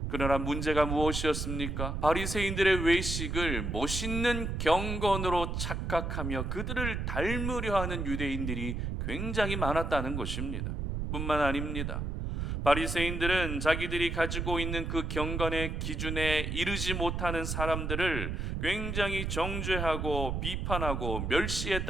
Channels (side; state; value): right; noise; rumble, 2 dB below the sound